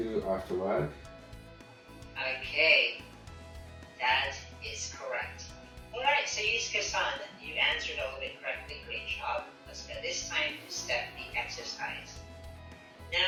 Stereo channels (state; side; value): identical; both; correlation 1.00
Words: after work? Okay, that is correct. Alright, so Yusuke-san, you answered all of it correctly. Great job. Let's go this time to step the exercise.